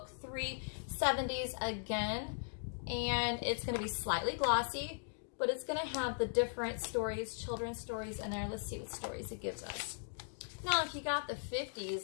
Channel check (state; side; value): silent; right; digital silence